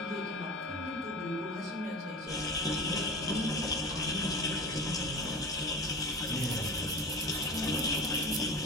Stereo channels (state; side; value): normal; both; correlation 0.32